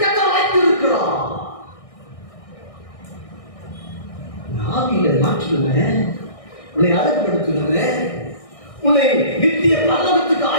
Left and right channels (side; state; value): right; late; 1.6 ms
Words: கர்த்தர் வைத்திருக்கிறார்? ஆவியில மாற்றுவேன், உன்னை அழகுபடுத்துவேன், உன்னை நித்திய பரலோகத்துக்கு